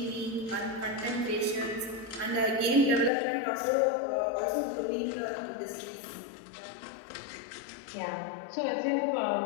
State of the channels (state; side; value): drops out; right; at 3.1 s